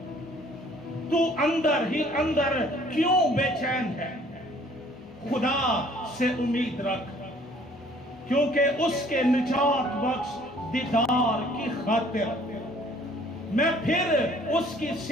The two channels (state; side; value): normal; both; correlation 0.57